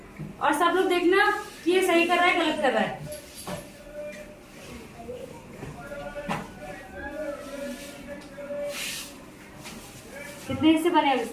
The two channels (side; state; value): both; identical; correlation 1.00